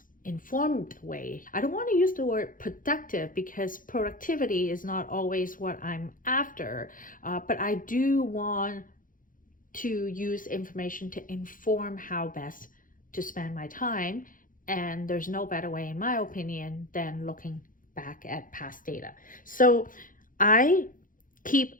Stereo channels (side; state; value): right; late; 0.39 ms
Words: informed way. I don't want to use the word productive because productivity is not always what I'm after, but I do want to use information to inform how best to spend my time. And there's no better way, in my opinion, than looking back at past data. So I keep